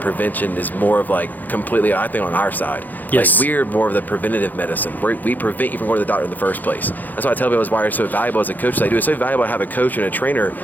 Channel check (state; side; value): late; right; 0.084 ms